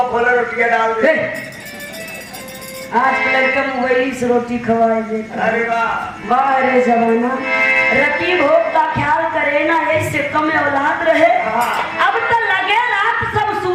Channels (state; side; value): identical; both; correlation 1.00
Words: खोले रोटियां डाल दे। आज के लड़का मोबाइल से रोटी खवाए देता। अरे वाह। वाह रे जमाना, रति भोग का ख्याल करे ना, ऐसे कम औलाद रहे। हाँ। अब तो लगे रात सब